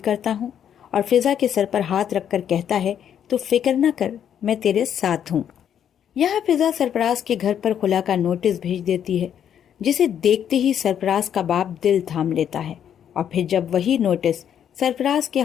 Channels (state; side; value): quieter; right; 9.2 dB